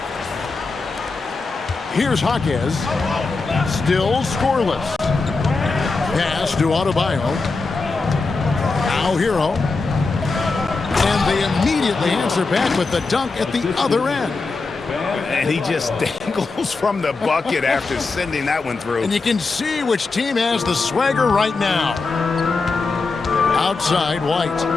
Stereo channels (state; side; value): quieter; right; 4.0 dB